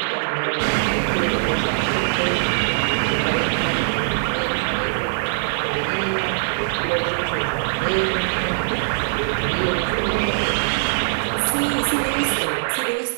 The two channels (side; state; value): left; silent; digital silence